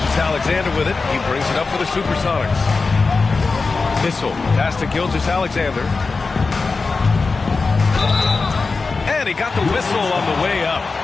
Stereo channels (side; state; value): right; quieter; 4.2 dB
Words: with it. He brings it up for the Supersonics. Issel, pass to Gilgeous-Alexander. And he got the whistle on the way up.